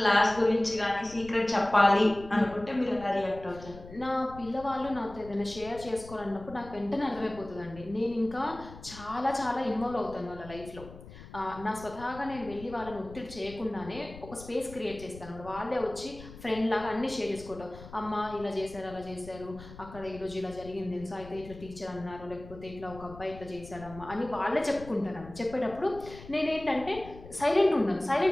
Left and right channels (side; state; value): left; noise; rumble, 16 dB below the sound